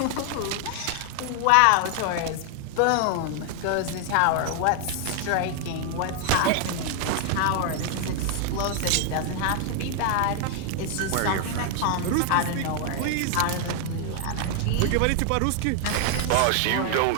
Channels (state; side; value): different; both; correlation 0.00